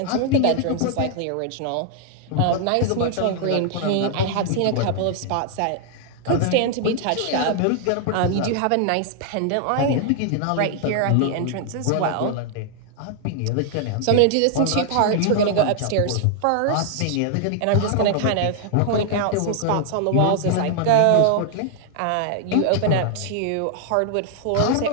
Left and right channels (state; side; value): different; both; correlation 0.00